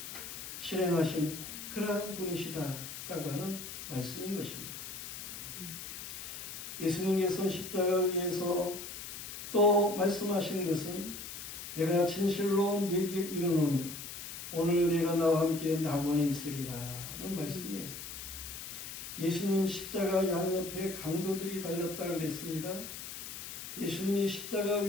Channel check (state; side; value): noise; left; hiss, 9 dB below the sound